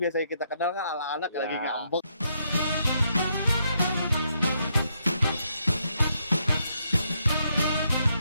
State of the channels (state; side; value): inverted; both; correlation -0.77